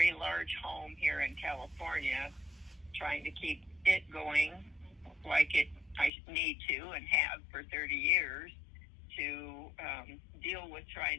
large home here in California, trying to keep it going like I need to and have for 30 years, to deal with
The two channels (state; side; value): drops out; right; at 6.1 s